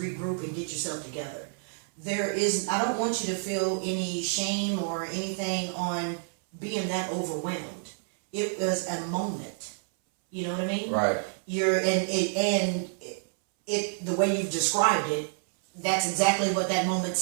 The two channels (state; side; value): silent; left; 59 dB below the other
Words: and get yourself together. I don't want you to feel any shame or anything on being that overwhelmed. It was a moment. You know what I mean? Right. The way you've described it, that's exactly what that moment